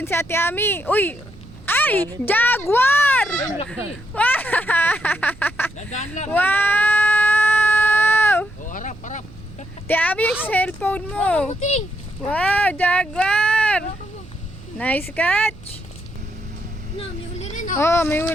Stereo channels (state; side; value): noise; right; rumble, 20 dB below the sound